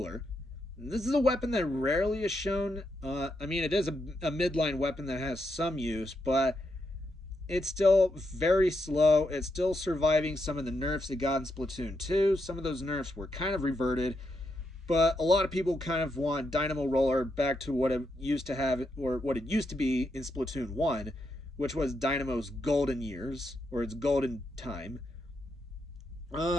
This is a weapon that rarely is shown. I mean, it is a midline weapon that has some use, but it's still very slow. It's still surviving some of the nerfs it got in Splatoon 2. Some of those nerfs were kind of reverted, but a lot of people kind of want Dynamo Roller back to what it used to have, or what it used to be in Splatoon 1, which was Dynamo's golden years, or its golden time.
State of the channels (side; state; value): both; normal; correlation 0.82